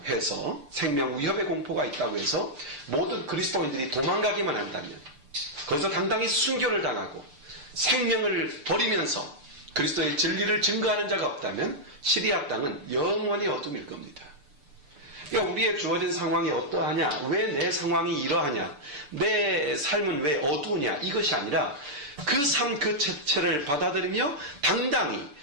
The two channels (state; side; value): late; left; 6.8 ms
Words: 해서, 생명 위협의 공포가 있다고 해서 모든 그리스도인들이 도망가기만 한다면, 거기서 당당히 순교를 당하고 생명을 버리면서 그리스도의 진리를 증거하는 자가 없다면 시리아 땅은 영원히 어둠일 겁니다. 그러니까 우리의 주어진 상황이 어떠하냐, 왜 내 상황이 이러하냐, 내 삶은 왜 어두우냐, 이것이 아니라 그 삶 그 자체를 받아들이며 당당히